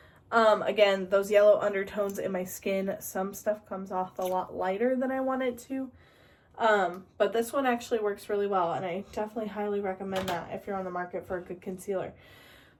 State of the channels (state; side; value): identical; both; correlation 1.00